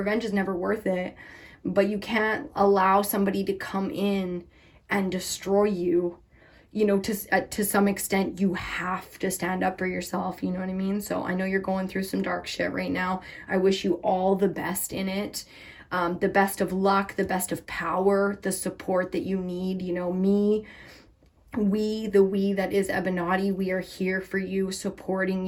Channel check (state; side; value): identical; both; correlation 1.00